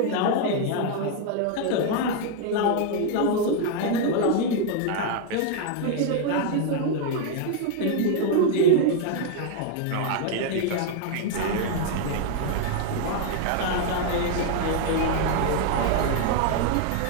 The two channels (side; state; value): both; different; correlation 0.00